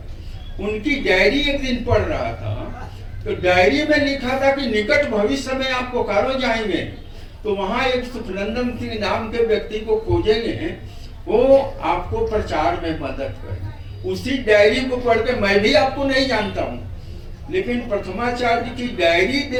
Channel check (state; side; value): identical; both; correlation 1.00